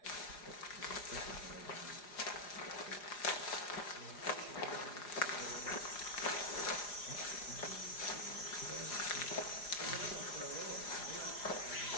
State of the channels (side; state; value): right; late; 4.9 ms